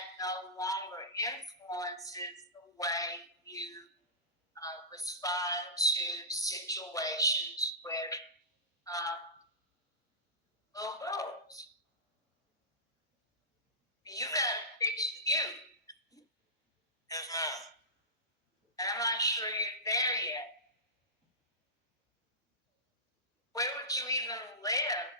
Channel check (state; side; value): normal; both; correlation -0.19